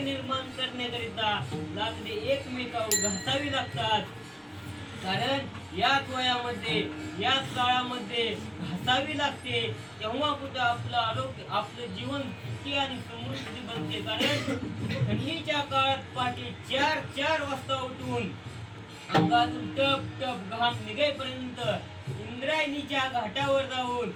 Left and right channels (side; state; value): both; identical; correlation 1.00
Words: करण्याकरिता लाकडे एकमेकावर घासावी लागतात, कारण याच वयामध्ये याच काळामध्ये घासावी लागते. तेव्हा कुठं आपलं आरोग्य आपलं जीवन सुखी आणि समृद्धी बनते, कारण थंडीच्या काळात पहाटे 4 वाजता उठून अंगातून टप टप घाम निघेपर्यंत इंद्रायणीच्या घाटावर जाऊन